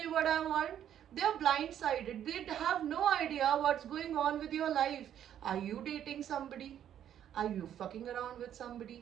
you what I want. They are blindsided. They have no idea what's going on with your life. Are you dating somebody? Are you fucking around with somebody?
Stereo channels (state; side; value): quieter; left; 10.2 dB